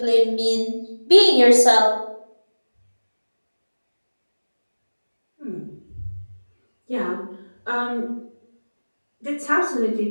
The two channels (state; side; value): inverted; both; correlation -1.00